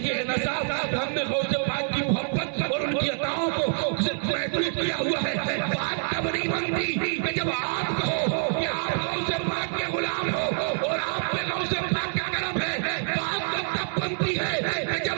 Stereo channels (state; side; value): silent; left; 61 dB below the other